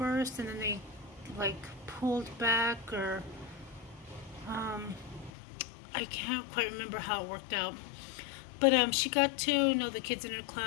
and then they like pulled back, or I can't quite remember how it worked out. But she got to know the kids in her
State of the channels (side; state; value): right; drops out; at 5.3 s